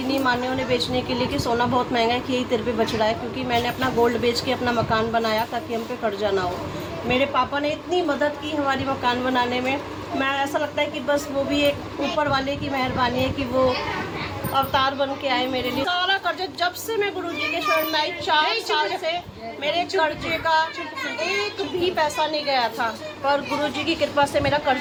नहीं माने उन्हें बेचने के लिए कि सोना बहुत महंगा है, कि यही तेरे पे बच रहा है, क्योंकि मैंने अपना गोल्ड बेच के अपना मकान बनाया ताकि हम पे कर्जा ना हो। मेरे पापा ने इतनी मदद की हमारी मकान बनाने में, मैं ऐसा लगता है कि बस वो भी एक ऊपर वाले की मेहरबानी है कि वो अवतार बन के आए मेरे लिए। सारा कर्जा जब से मैं गुरुजी के शरण में आई, 4 साल से मेरे कर्जे का एक भी पैसा नहीं गया था, पर गुरुजी की कृपा से मेरा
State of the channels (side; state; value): both; identical; correlation 1.00